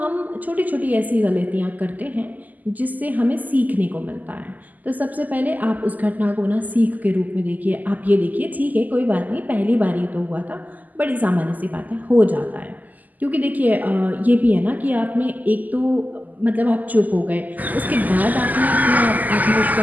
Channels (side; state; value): left; late; 0.081 ms